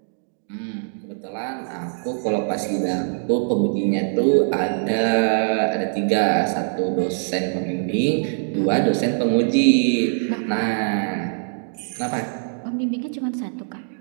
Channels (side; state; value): left; silent; digital silence